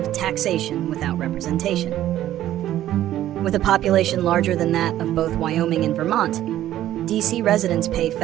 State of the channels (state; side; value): quieter; left; 12.9 dB